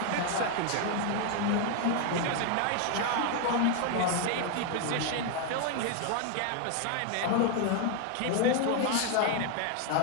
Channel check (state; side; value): different; both; correlation 0.01